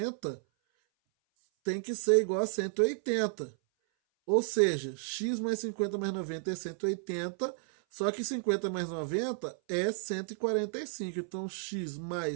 tem que ser igual a 180. Ou seja, x mais 50 mais 90 é 180, só que 50 mais 90 é 145. Então, x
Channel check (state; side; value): silent; left; 56 dB below the other